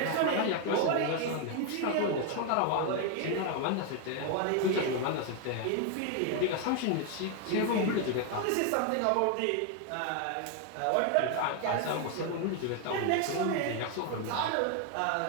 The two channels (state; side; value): different; both; correlation 0.01